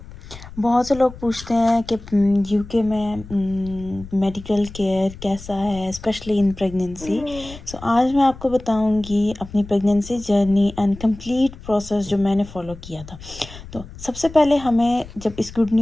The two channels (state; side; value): noise; left; rumble, 16 dB below the sound